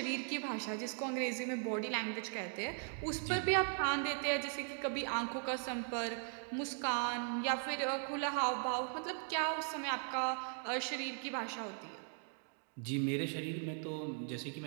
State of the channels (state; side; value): silent; left; 52 dB below the other